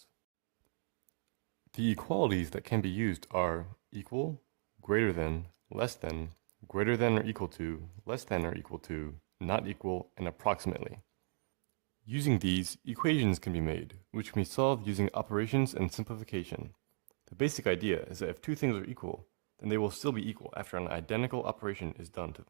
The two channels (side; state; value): left; silent; digital silence